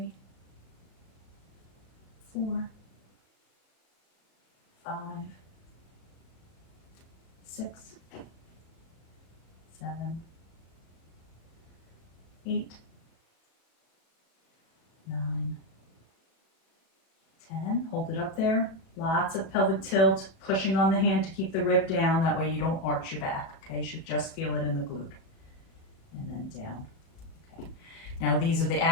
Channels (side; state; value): right; late; 37 ms